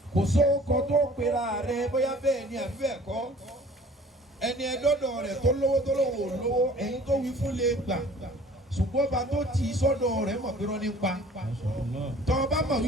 kò sóhun tó pera rẹ bóyá bẹ́ẹ̀ ni àbí bẹ́ẹ̀ kọ́ ẹni ẹdọ́dọ̀ rẹ̀ tó lówó tó lówó lówó ẹ̀yin tó wí fún lè gbà ṣùgbọ́n bá tó tì í sọ́dọ̀ rẹ̀ mọ̀ pé wọ́n ní pa tọ́ ọ bá mọ̀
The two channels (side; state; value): both; normal; correlation 0.50